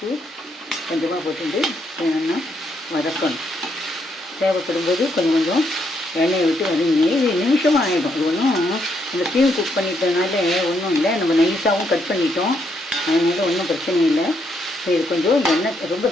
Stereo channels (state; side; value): normal; both; correlation 0.76